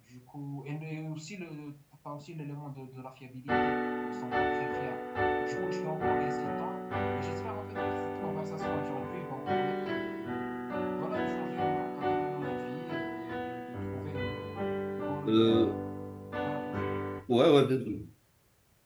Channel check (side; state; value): both; identical; correlation 1.00